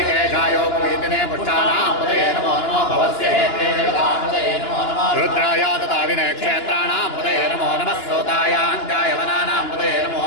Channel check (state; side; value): late; right; 2.9 ms